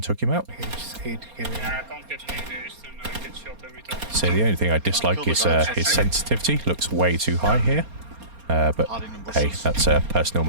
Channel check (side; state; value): left; late; 4.3 ms